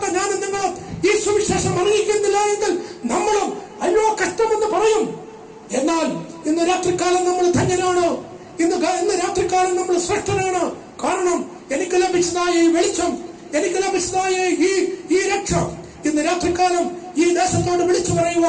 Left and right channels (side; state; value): both; identical; correlation 1.00